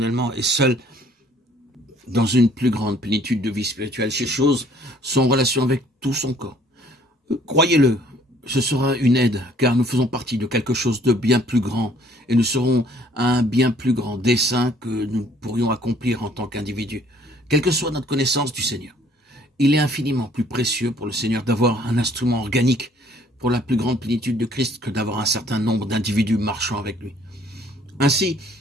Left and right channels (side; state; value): both; normal; correlation 0.59